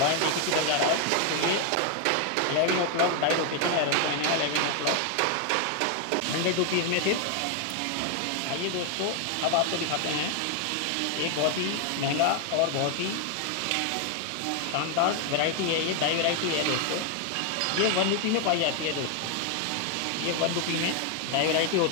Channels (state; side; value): different; both; correlation 0.00